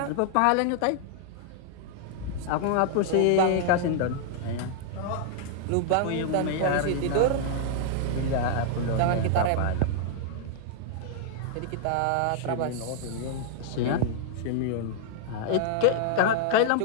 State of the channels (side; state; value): both; different; correlation -0.01